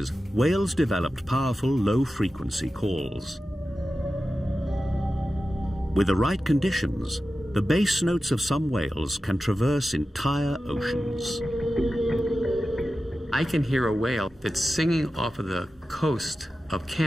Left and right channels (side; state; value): both; normal; correlation 0.93